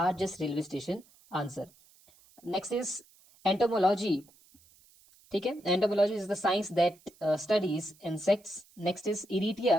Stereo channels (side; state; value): right; noise; hiss, 28 dB below the sound